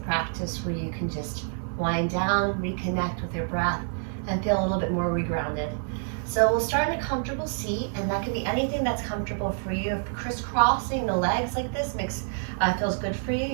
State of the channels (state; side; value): silent; left; 60 dB below the other